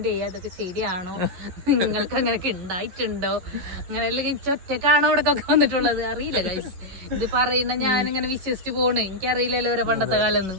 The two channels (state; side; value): late; left; 11 ms